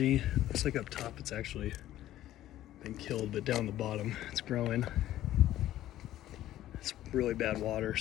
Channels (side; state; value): right; quieter; 13.6 dB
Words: Looks like up top it's actually been killed, but down the bottom it's growing. It's really bad water,